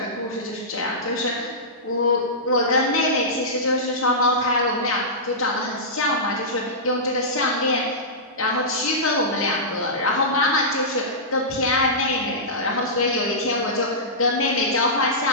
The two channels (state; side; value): normal; both; correlation -0.16